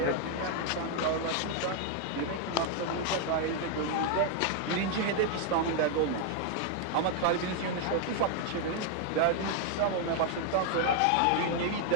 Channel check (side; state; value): both; different; correlation 0.00